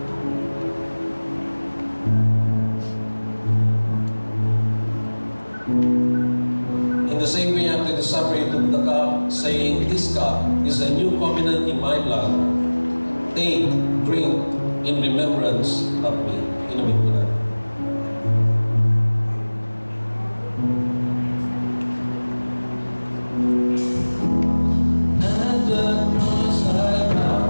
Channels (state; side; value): inverted; both; correlation -1.00